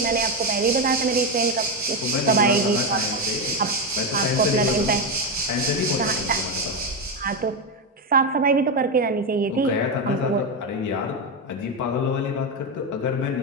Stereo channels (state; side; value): normal; both; correlation 0.10